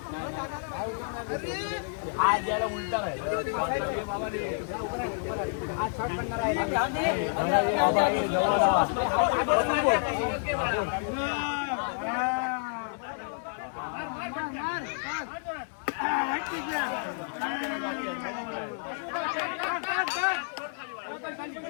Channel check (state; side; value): silent; right; digital silence